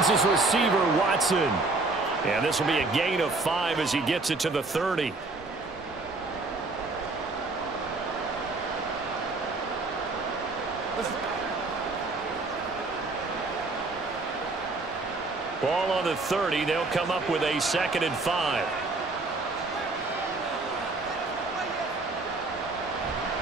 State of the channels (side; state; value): left; quieter; 3.4 dB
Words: his receiver, Watson. And this will be a gain of 5 as he gets it to the 30. Ball on the 30. They'll come up with a 2nd and 5.